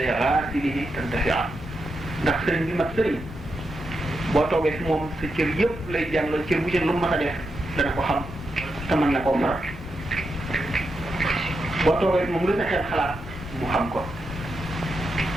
xaasilihi tantafia ndax sëriñ bi mat sëriñ boo toogee fi moom sa cër yëpp lay jàngal cër bu ci lu mu mas a def dana ko xam te mën na koo faral boo toogee fi moom lu sa xel xalaat mu xam ko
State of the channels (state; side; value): normal; both; correlation 0.86